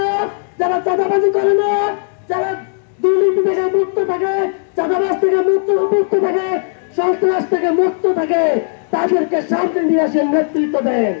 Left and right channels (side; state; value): right; silent; digital silence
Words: যারা চাঁদাবাজি করে না, যারা দুর্নীতি থেকে মুক্ত থাকে, চাঁদাবাজ থেকে মুক্ত থাকে, সন্ত্রাস থেকে মুক্ত থাকে, তাদেরকে সামনে নিয়ে আসেন, নেতৃত্ব দেন।